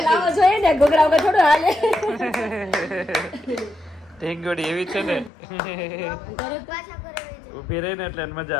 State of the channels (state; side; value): drops out; right; at 5.3 s